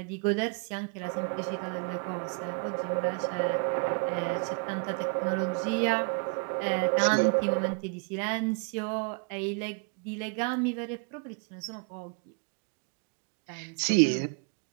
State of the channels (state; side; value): quieter; left; 38.4 dB